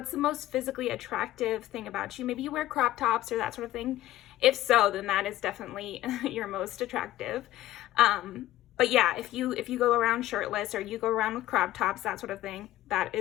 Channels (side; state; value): right; quieter; 14.8 dB